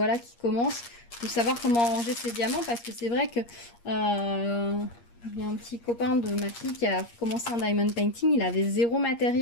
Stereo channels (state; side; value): late; right; 8.5 ms